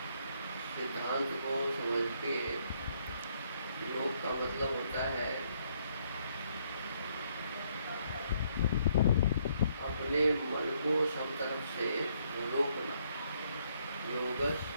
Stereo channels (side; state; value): both; inverted; correlation -0.70